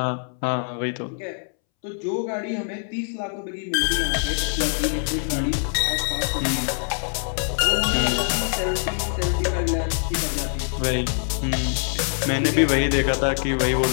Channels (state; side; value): silent; right; 63 dB below the other